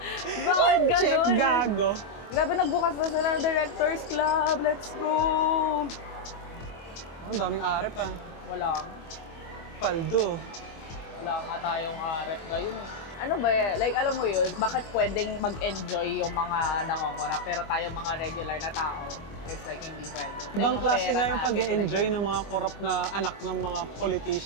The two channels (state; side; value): late; right; 25 ms